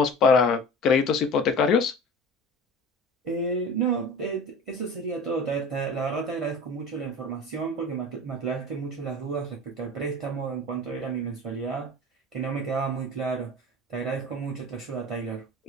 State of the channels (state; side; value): normal; both; correlation 0.37